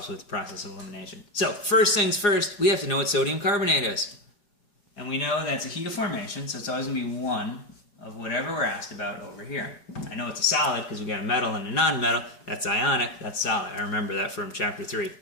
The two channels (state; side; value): late; right; 4.9 ms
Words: with process elimination. So first things first, we have to know what sodium carbonate is. And we know that's a heat of formation, so it's always going to be 1 of whatever we're asked about over here. I know it's a solid because we got a metal and a non-metal. That's ionic, that's solid. I remember that from chapter 3.